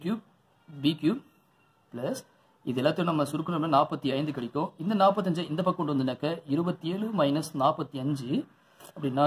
cube B cube plus இது எல்லாத்தையும் நம்ம சுருக்கணும்னா 45 கிடைக்கும். இந்த 45 இந்த பக்கம் கொண்டு வந்தனாக்க 27 மைனஸ் 45 அப்படின்னா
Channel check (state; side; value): identical; both; correlation 1.00